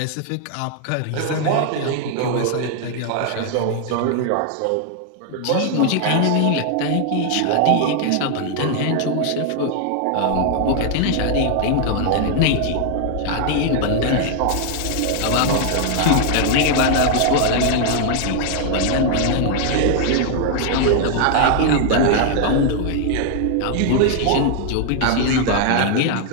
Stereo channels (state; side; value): different; both; correlation 0.00